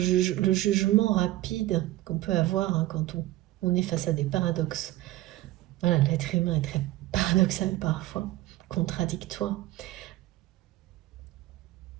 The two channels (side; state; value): left; quieter; 16.5 dB